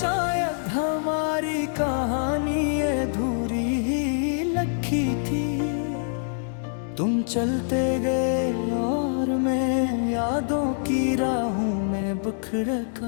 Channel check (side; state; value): right; silent; digital silence